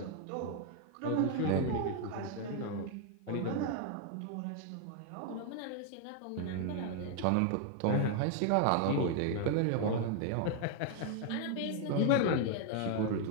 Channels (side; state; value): both; different; correlation 0.01